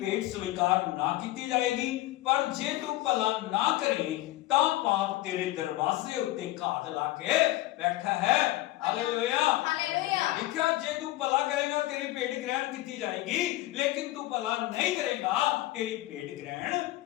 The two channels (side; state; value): right; quieter; 16.9 dB